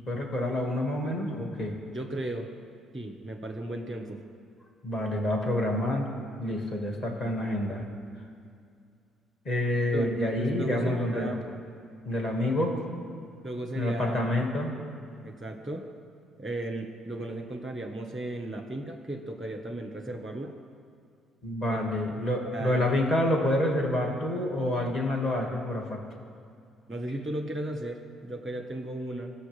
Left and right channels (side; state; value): both; normal; correlation 0.69